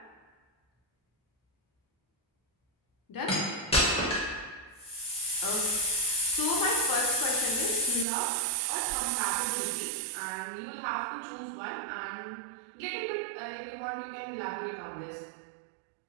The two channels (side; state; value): left; drops out; at 8.1 s